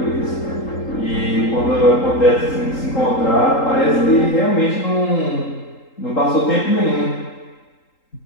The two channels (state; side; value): late; right; 3.8 ms